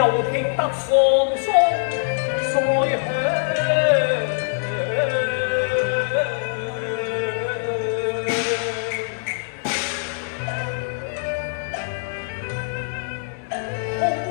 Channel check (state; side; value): silent; right; 63 dB below the other